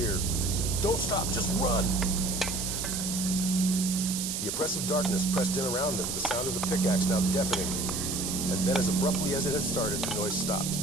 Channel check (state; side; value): noise; right; hiss, 3 dB below the sound